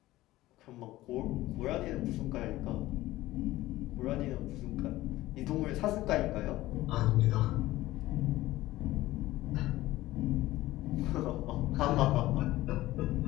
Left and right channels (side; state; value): right; quieter; 16.7 dB